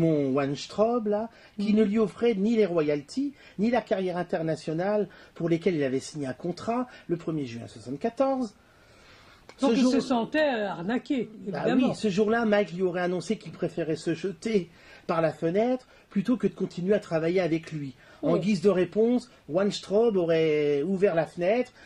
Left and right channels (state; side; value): identical; both; correlation 1.00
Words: Weinstraub, là, qui ne lui offrait ni les royalties, ni la carrière internationale pour lesquelles il avait signé un contrat le 1er juin 1974. Donc il se sentait arnaqué, évidemment. Oui, ce jour-là, Mike lui aurait annoncé qu'il préférait se jeter par la fenêtre plutôt que de continuer à travailler avec lui. En guise de réponse, Weinstraub aurait ouvert la fenêtre